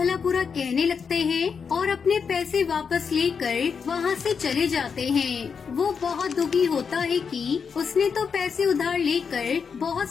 बुरा कहने लगते हैं और अपने पैसे वापस लेकर वहाँ से चले जाते हैं। वो बहुत दुखी होता है कि उसने तो पैसे उधार लेकर बहुत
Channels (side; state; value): right; quieter; 6.1 dB